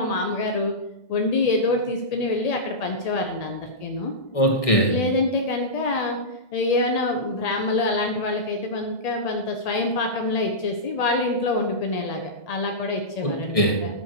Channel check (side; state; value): right; late; 1.6 ms